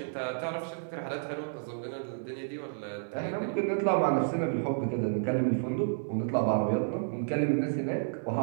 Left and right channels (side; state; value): left; silent; digital silence